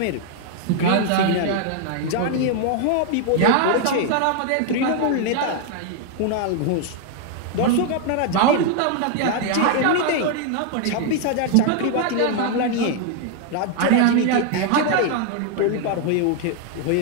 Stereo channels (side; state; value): both; different; correlation 0.00